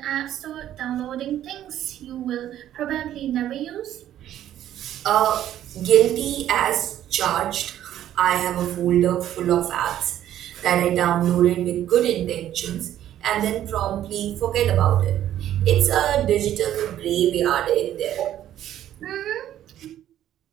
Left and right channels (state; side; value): quieter; left; 11.8 dB